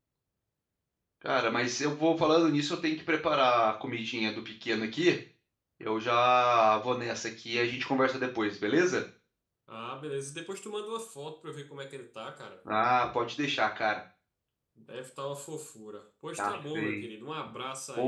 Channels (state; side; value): identical; both; correlation 1.00